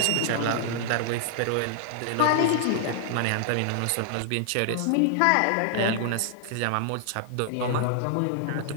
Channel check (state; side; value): different; both; correlation -0.01